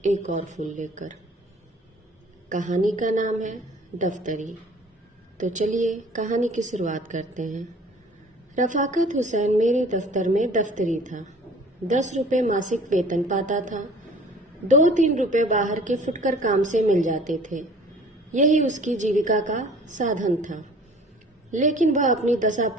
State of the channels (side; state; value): both; normal; correlation 0.49